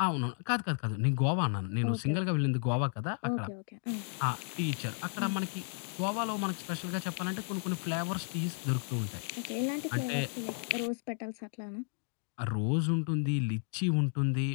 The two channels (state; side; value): silent; right; 55 dB below the other